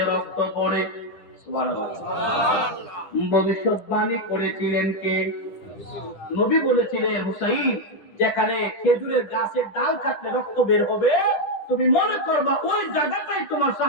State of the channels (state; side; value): late; right; 10 ms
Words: রক্ত পড়ে। ভবিষ্যৎবাণী করেছিলেন কে? নবী বলেছিলেন হুসাইন যেখানে খেজুরের গাছের ডাল কাটলে রক্ত বের হবে, তুমি মনে করবা ওই জায়গাটাই তোমার